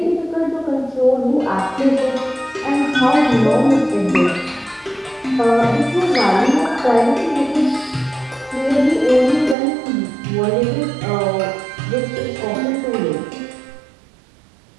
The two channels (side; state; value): left; drops out; at 9.6 s